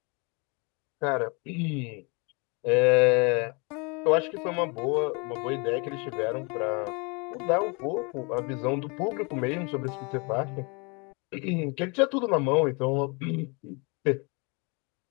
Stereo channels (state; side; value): quieter; right; 31.1 dB